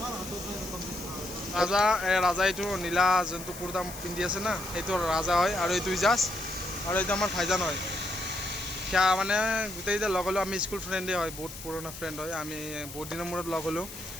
ৰাজা ৰাজা এইটো নীলা যোনটো কুৰ্তা পিন্ধি আছে না সেইটো ৰাজা হয় আৰু এইটো ইজাজ আৰু এইটো আমাৰ ভাইজান হয় সেয়া মানে গোটেইকেইটা লগ হ'লোঁ আমি স্কুল ফ্ৰেণ্ডেই হয় বহুত পুৰণা ফ্ৰেণ্ড হয় আমি বহুত দিনৰ মূৰত লগ হ'লোঁ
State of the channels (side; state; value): left; noise; hiss, 13 dB below the sound